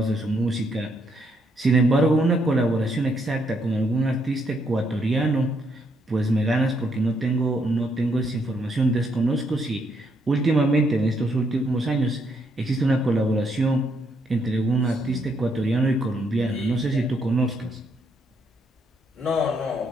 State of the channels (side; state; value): both; normal; correlation 0.74